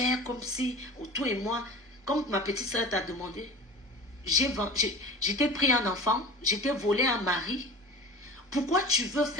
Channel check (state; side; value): normal; both; correlation 0.37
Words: comme si, toi et moi, comme ma petite soeur t'a demandé, j'étais pris un enfant, j'étais volé un mari. Pourquoi tu veux